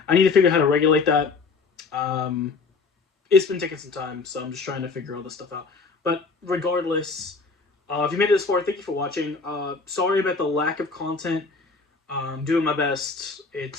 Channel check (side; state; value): right; quieter; 4.4 dB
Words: I need to figure out how to regulate that. It's been taking some time, so I'm just trying to figure all this stuff out. But regardless, if you made it this far, thank you for watching. Sorry about the lack of content. I'm doing my best.